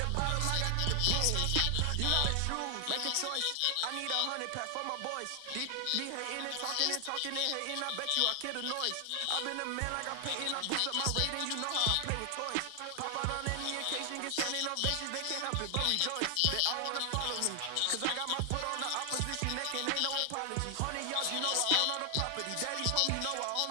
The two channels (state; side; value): different; both; correlation 0.00